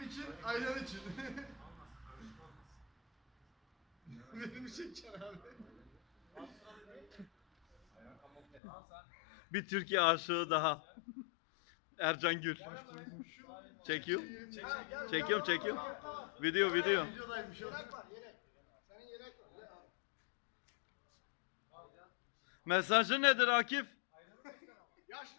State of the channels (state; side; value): drops out; right; at 8.6 s